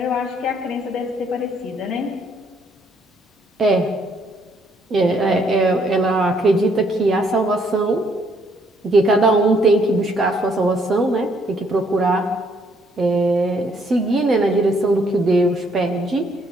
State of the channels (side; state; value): both; normal; correlation 0.68